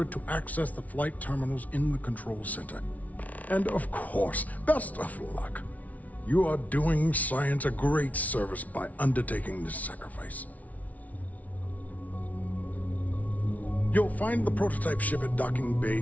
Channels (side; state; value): right; late; 0.071 ms